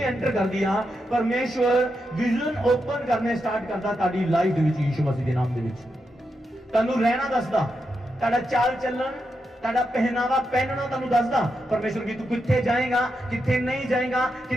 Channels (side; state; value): both; normal; correlation 0.85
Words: करदी आ परमेश्वर विजन ओपन करने स्टार्ट करदा ताड़ी लाइफ दे विच यीशु मसीह दे नाम दे विच। तन्नू रहना दसदा, ताड़ा चाल चलन, ताड़ा पहनावा पहनना तन्नू दसदा परमेश्वर की तू कित्थे जाएगा कित्थे नहीं जाएगा,